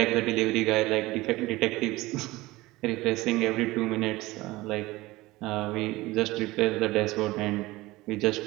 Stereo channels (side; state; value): left; quieter; 19.6 dB